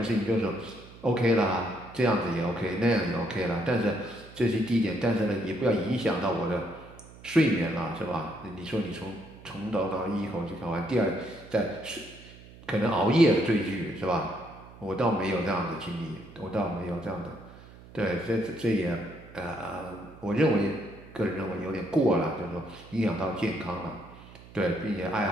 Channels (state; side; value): noise; right; hum, 20 dB below the sound